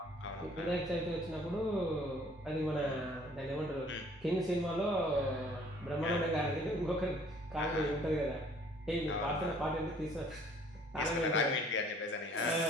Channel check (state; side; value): normal; both; correlation 0.57